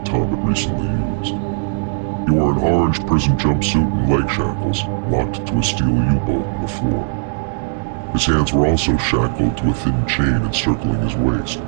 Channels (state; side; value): silent; left; 67 dB below the other